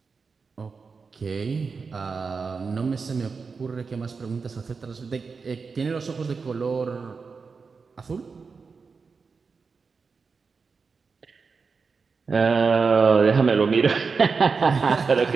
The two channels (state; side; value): quieter; left; 5.0 dB